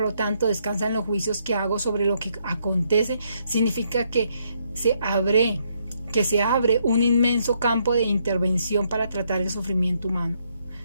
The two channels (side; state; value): both; inverted; correlation -0.73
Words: lo tanto, descansa en los juicios que hago sobre lo que acontece, significa que se abre un inmenso campo de intervención para tratar el sufrimiento humano.